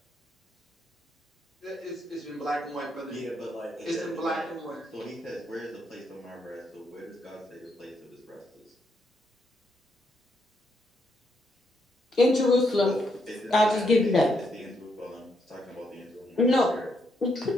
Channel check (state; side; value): normal; both; correlation 0.77